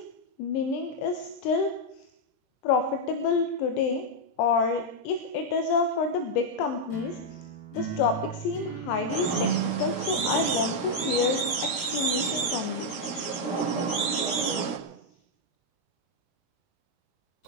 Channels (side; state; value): right; late; 17 ms